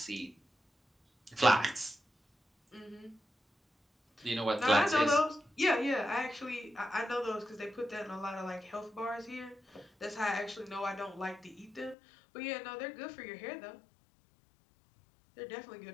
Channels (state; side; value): drops out; right; at 12.0 s